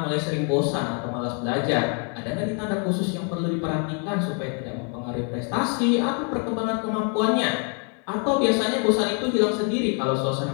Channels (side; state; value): right; quieter; 39.7 dB